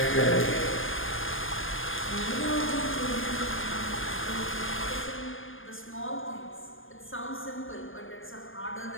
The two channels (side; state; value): right; late; 0.59 ms